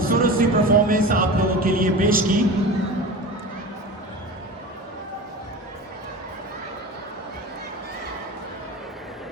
सी परफॉर्मेंस आप लोगों के लिए पेश की।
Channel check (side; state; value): both; normal; correlation 0.31